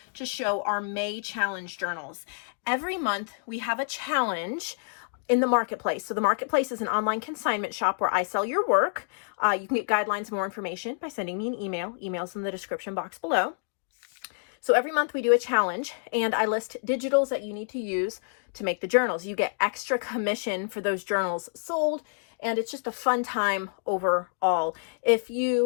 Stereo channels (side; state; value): right; silent; digital silence